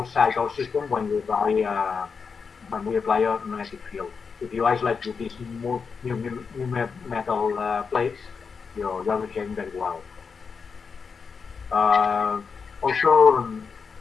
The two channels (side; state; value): right; quieter; 5.5 dB